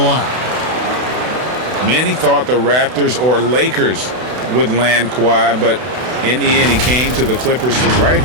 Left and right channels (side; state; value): left; late; 32 ms